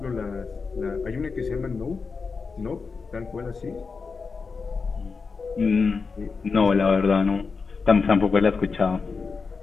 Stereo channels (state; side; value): quieter; right; 4.9 dB